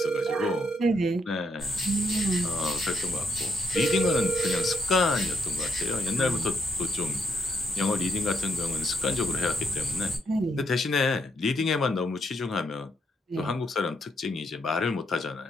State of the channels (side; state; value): both; normal; correlation 0.74